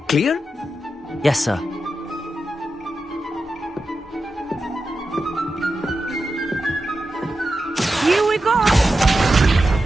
Clear? Yes, sir. Here we go!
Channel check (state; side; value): normal; both; correlation 0.90